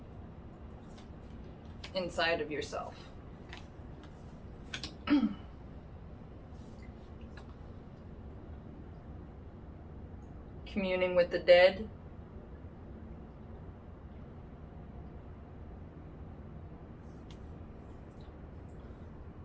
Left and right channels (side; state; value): both; identical; correlation 1.00